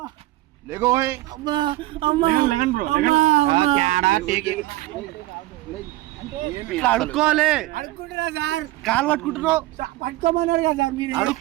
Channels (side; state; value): left; quieter; 17.6 dB